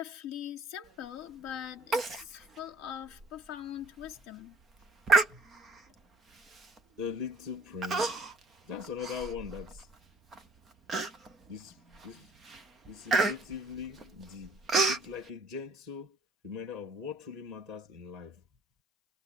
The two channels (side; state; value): both; normal; correlation 0.54